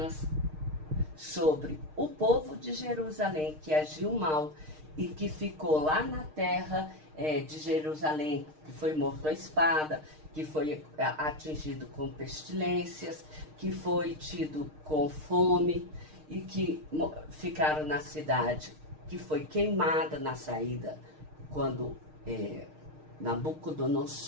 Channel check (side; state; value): left; late; 6.5 ms